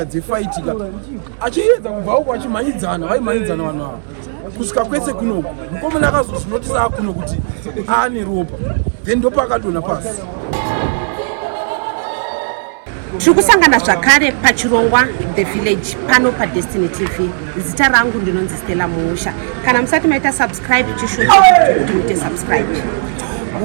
dzefaitika achiedza kubva uko achimhanyidzana vaimhanyidzana vanhu ava kusvika kwese kunoku mukomana akazozvinotisa akuno kuti aane ropa then ndopa akadonha pasi. Tiri kusangana zvakare pachirongwa The Village pano paDestiny TV. Zita rangu ndinonzi Stella Muusha. Kana musati maita subscribe chishuwa chechi kuti muite subscribe.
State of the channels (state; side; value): silent; left; digital silence